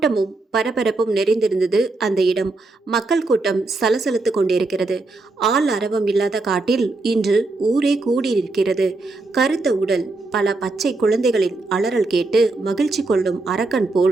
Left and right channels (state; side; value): quieter; left; 3.3 dB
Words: பரபரப்பும் நிறைந்திருந்தது அந்த இடம். மக்கள் கூட்டம் சலசலத்து கொண்டிருக்கிறது. ஆள் அரவம் இல்லாத காட்டில் இன்று ஊரே கூடியிருக்கிறது. கருத்த உடல், பல பச்சை குழந்தைகளின் அலறல் கேட்டு மகிழ்ச்சி கொள்ளும் அரக்கன்